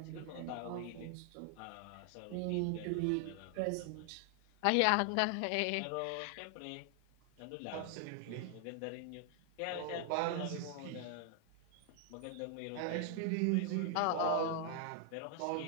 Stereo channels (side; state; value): both; different; correlation 0.00